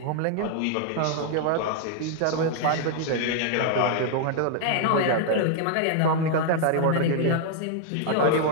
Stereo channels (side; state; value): both; different; correlation 0.00